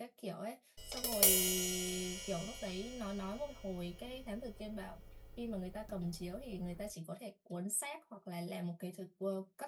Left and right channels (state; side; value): identical; both; correlation 1.00